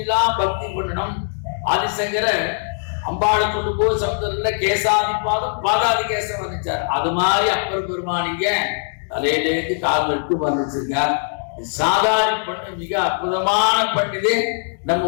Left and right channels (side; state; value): right; silent; digital silence